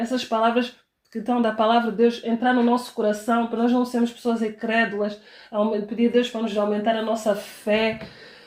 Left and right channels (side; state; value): both; identical; correlation 1.00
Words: palavras que estão da palavra de Deus, entrar no nosso coração, para nós não sermos pessoas incrédulas, pedir a Deus para nos aumentar a nossa fé